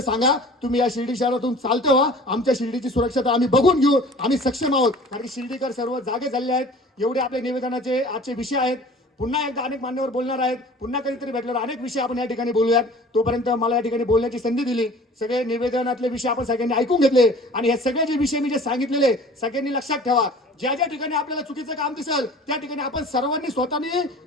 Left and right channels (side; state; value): both; normal; correlation 0.45